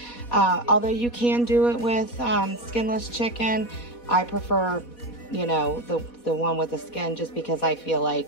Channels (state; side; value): late; right; 4.2 ms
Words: Although you can do it with skinless chicken, I prefer, you know, the one with the skin just because I feel